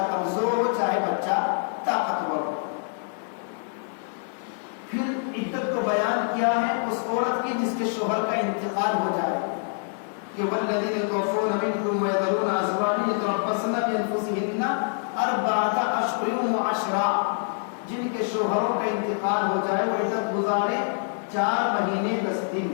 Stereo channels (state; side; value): silent; right; 61 dB below the other